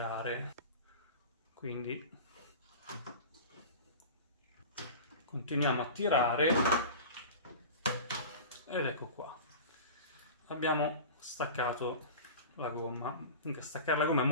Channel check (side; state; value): both; inverted; correlation -0.34